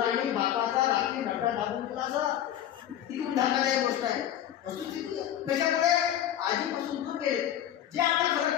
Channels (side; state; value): right; quieter; 11.1 dB